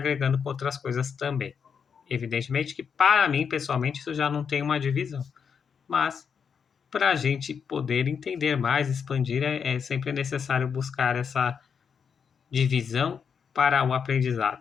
com outras coisas também. Evidentemente que para mim, pessoalmente, isso já não tem uma divisão, mas para a gente poder entender mais, expandir, é sempre necessário buscar essa divisão para o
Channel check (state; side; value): quieter; right; 6.7 dB